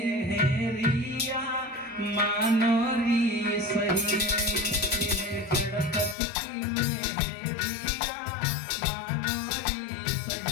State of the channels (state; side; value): drops out; right; at 6.2 s